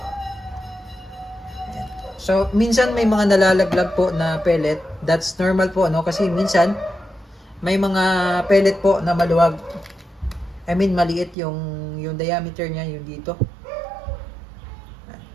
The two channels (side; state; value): left; drops out; at 11.4 s